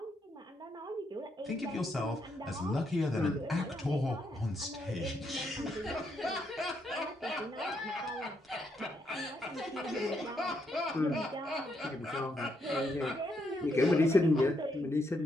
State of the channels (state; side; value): normal; both; correlation 0.77